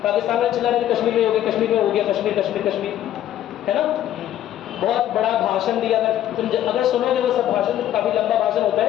पाकिस्तान में चला रहे कश्मीर में हो गया, कश्मीर में हो गया, कश्मीर कश्मीर कश्मीर, है ना। बहुत बड़ा भाषण दिया, तुम अगर सुनोगे वो सब भाषण, काफी लंबा भाषण होता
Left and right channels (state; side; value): quieter; right; 12.1 dB